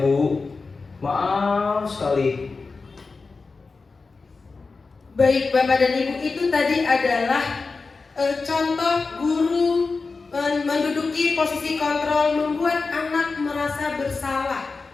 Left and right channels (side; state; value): right; quieter; 4.2 dB